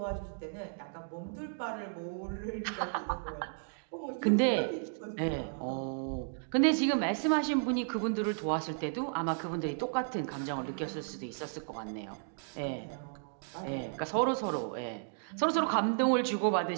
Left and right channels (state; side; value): silent; left; digital silence